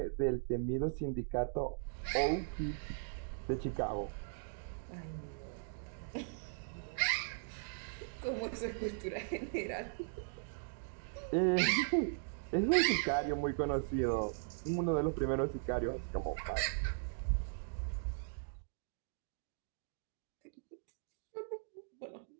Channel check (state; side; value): silent; left; digital silence